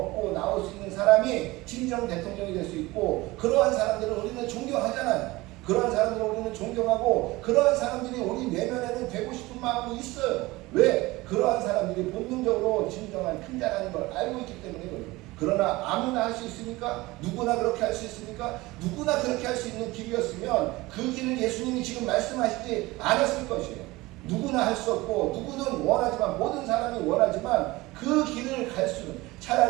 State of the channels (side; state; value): left; quieter; 20.6 dB